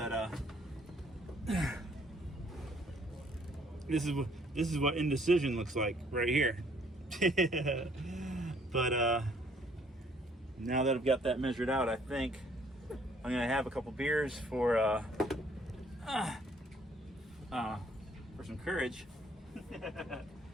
this is what indecision looks like right here. But now that I've got that measured out, I think I'm gonna have a couple beers for some courage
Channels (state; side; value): normal; both; correlation 0.63